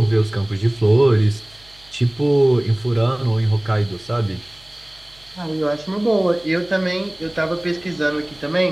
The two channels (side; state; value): right; noise; hum, 26 dB below the sound